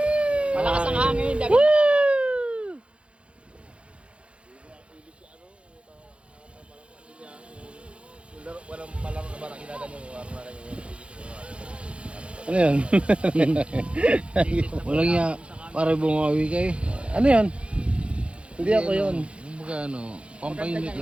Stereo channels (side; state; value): left; late; 0.059 ms